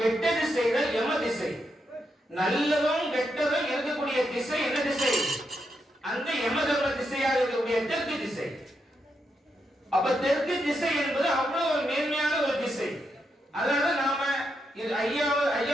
செய்தா யம திசை. நல்லதும் கெட்டதும் இருக்கக்கூடிய திசை என்ன திசை? அந்த யம தர்ம திசையாக இருக்கக்கூடிய தெற்கு திசை. அப்ப தெற்கு திசை என்பது அவ்வளவு ஒரு மேன்மையான ஒரு திசை. அதனால நாம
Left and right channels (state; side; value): normal; both; correlation 0.83